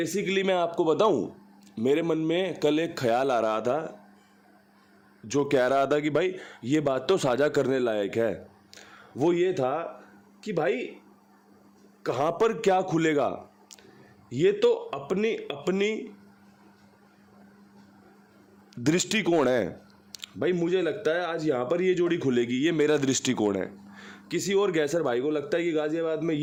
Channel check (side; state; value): both; identical; correlation 1.00